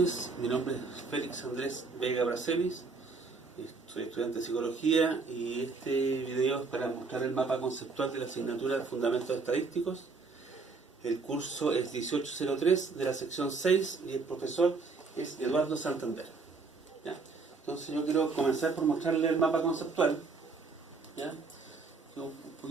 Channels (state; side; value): quieter; left; 4.3 dB